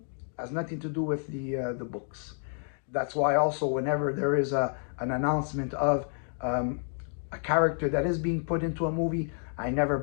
has nothing to do with the books. That's why also whenever there is an announcement of a character that is being put into a movie, I never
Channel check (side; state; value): right; silent; 58 dB below the other